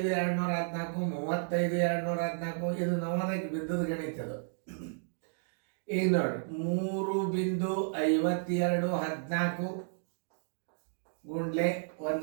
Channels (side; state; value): left; silent; digital silence